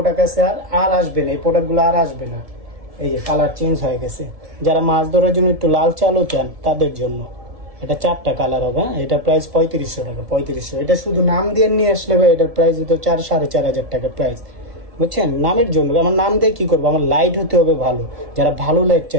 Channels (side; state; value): left; late; 1.7 ms